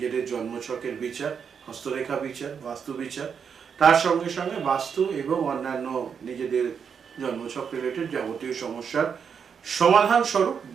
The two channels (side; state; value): left; quieter; 6.8 dB